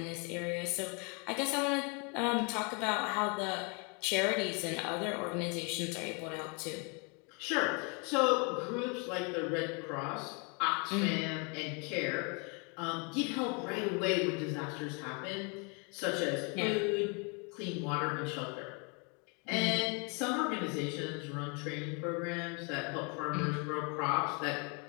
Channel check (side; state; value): right; quieter; 33.7 dB